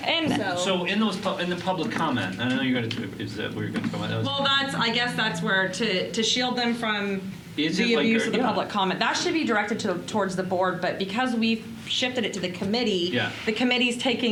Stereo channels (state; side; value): identical; both; correlation 1.00